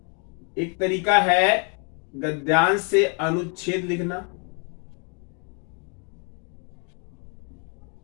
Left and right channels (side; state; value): right; quieter; 36.8 dB